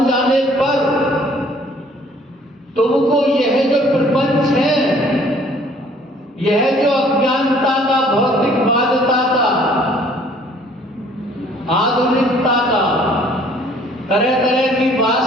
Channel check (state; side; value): normal; both; correlation 0.57